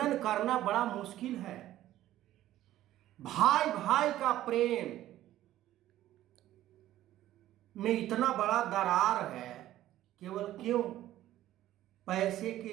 करना बड़ा मुश्किल है। भाई भाई का प्रेम में इतना बड़ा दरार है, केवल क्यों? पैसे के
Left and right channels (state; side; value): quieter; left; 13.8 dB